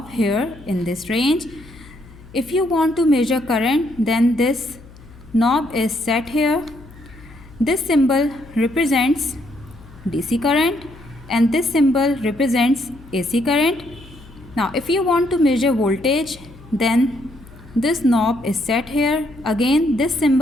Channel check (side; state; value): left; noise; hum, 21 dB below the sound